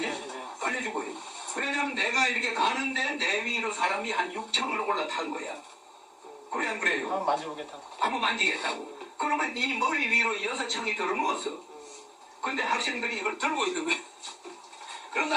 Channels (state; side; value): identical; both; correlation 1.00